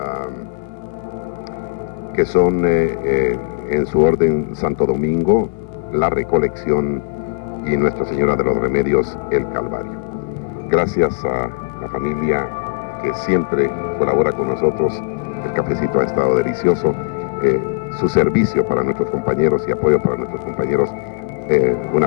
que son en su orden Santo Domingo, La Recolección y Nuestra Señora de los Remedios, el Calvario. Gracias a la familia que siempre colabora con nosotros. El cafecito ha estado delicioso. Su servicio para nuestros compañeros y apoyo para nuestros compañeros, una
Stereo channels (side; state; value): right; quieter; 32.9 dB